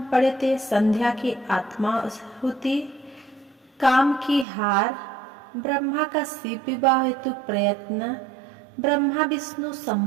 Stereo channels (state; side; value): drops out; left; at 4.5 s